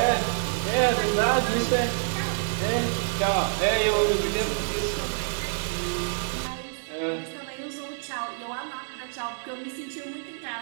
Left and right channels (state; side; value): silent; left; digital silence